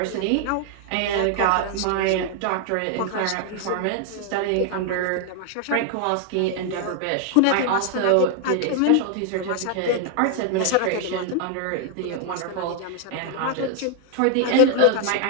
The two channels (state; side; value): different; both; correlation 0.00